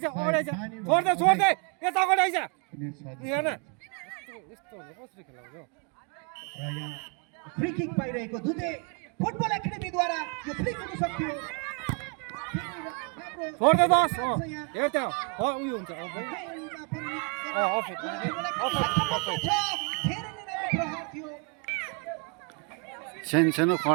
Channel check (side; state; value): left; quieter; 35.2 dB